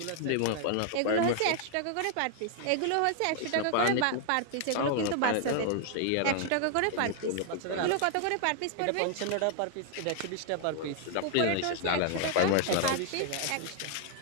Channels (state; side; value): different; both; correlation 0.00